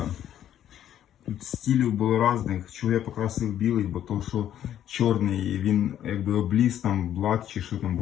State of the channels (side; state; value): right; quieter; 10.9 dB